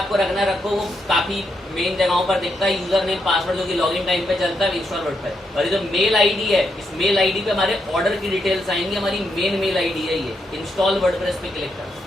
रखना रखो, वो काफी मेन जगहों पर दिखता है, यूजर नेम, पासवर्ड जो कि लॉगिन टाइम पे चलता है, इंस्टॉल वर्डप्रेस। और ये जो मेल आईडी है, इस मेल आईडी पे हमारे ऑर्डर की डिटेल्स आएंगी। हमारी मेन मेल आईडी है ये, इंस्टॉल वर्डप्रेस पे क्लिक कर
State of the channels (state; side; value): normal; both; correlation 0.80